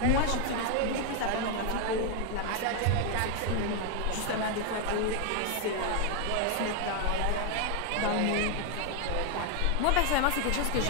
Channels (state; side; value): different; both; correlation 0.01